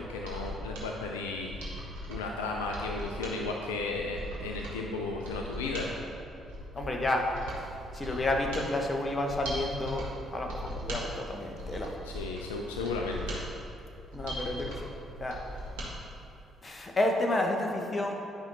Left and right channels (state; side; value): normal; both; correlation 0.66